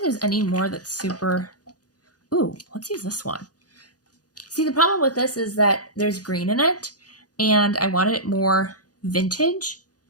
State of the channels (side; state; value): right; late; 0.68 ms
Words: there's any more that's super... Ooh, let's use this one. See, the problem with this is that there's green in it, and I wanted it more vintage.